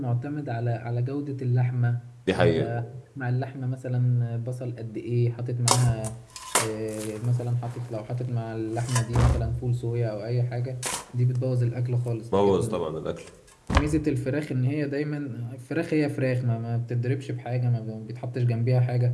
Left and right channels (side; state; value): both; identical; correlation 1.00